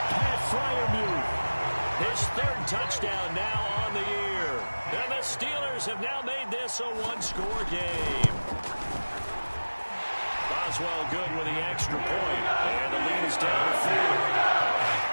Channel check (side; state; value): both; inverted; correlation -1.00